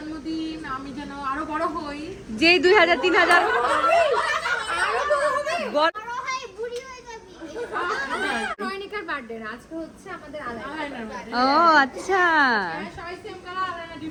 আমি যেন আরো বড় হই। যেই 2000 3000 রয়নিকার বার্থডে না, আজকে হচ্ছে আমাদের আলাদা। ও আচ্ছা, সবাই সেম কালার, আলাদা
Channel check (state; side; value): identical; both; correlation 1.00